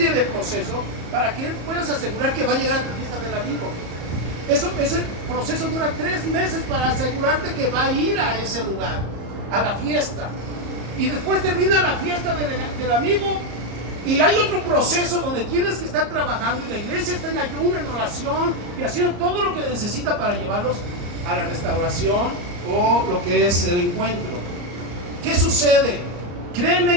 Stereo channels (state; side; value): late; left; 34 ms